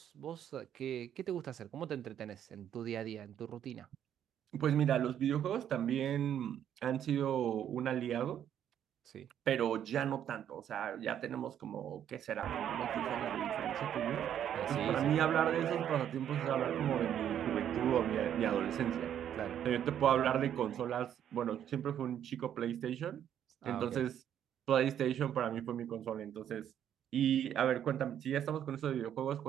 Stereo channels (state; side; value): quieter; left; 9.9 dB